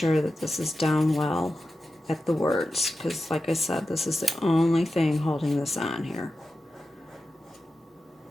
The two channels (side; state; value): both; normal; correlation 0.92